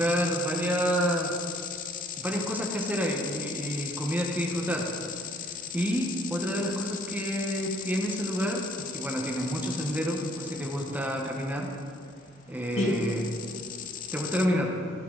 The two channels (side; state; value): both; normal; correlation 0.60